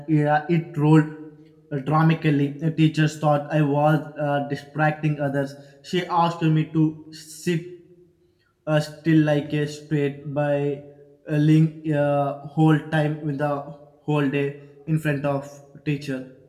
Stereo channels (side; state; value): both; identical; correlation 1.00